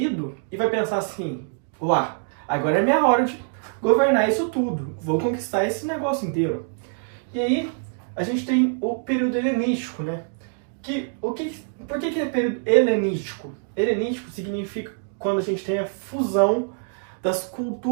e vai pensar assim, uá, agora é minha hora de governar isso tudo, vou conquistar esse negócio inteiro. E aí, a gente tem o período helenístico, né? Por que é período helenístico? Helenístico significa quando a gente tem a fusão das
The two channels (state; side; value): silent; left; 61 dB below the other